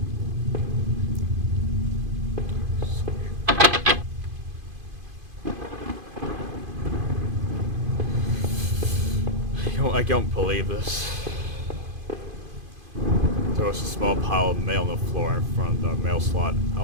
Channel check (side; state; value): left; late; 2.5 ms